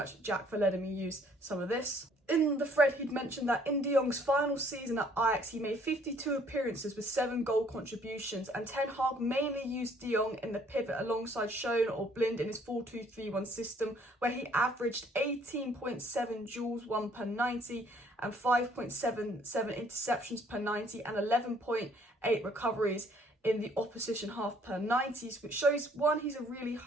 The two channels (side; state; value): both; normal; correlation 0.61